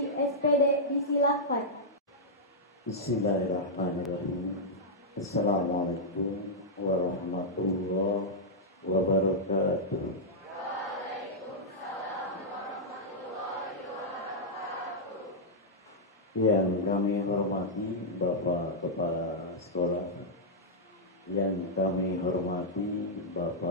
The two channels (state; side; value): normal; both; correlation -0.09